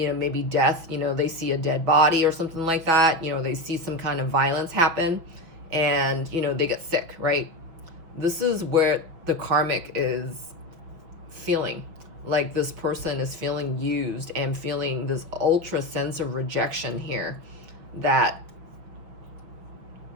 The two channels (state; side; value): late; left; 6.0 ms